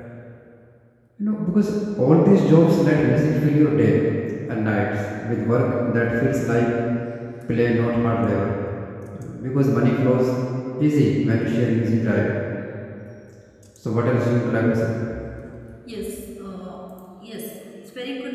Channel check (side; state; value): both; identical; correlation 1.00